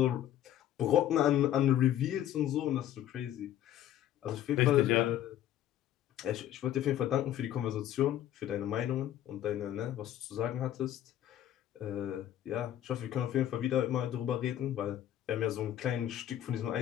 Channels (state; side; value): quieter; right; 11.8 dB